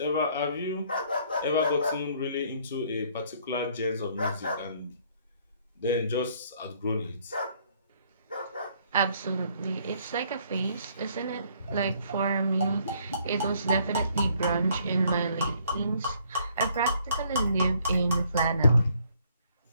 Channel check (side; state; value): both; inverted; correlation -0.65